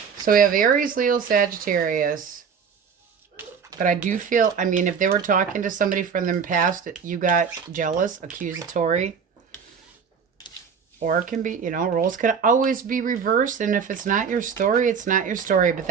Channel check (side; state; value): left; quieter; 6.5 dB